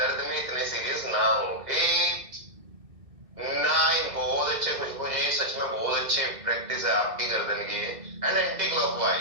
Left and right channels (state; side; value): late; left; 1.9 ms